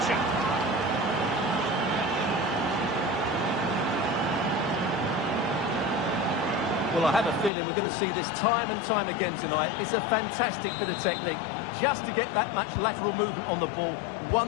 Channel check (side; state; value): right; drops out; at 7.5 s